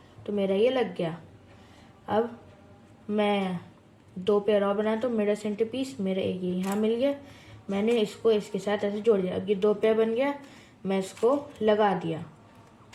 तो मेरा ये लग गया। अब मैं 2 पेयर और बनाता हूँ। मेरा सेंटर पीस मेरा एक ये यहाँ मिल गया, मैंने इसको इसके साथ ऐसे जोड़ दिया। अब ये 2 पेयर बन गया, मैं इसको लगा दिया,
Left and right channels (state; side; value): identical; both; correlation 1.00